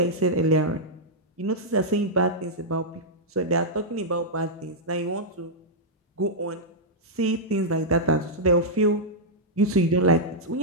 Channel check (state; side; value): normal; both; correlation -0.08